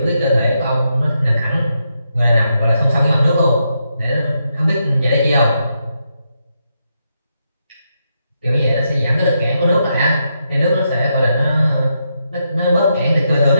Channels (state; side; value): inverted; both; correlation -0.82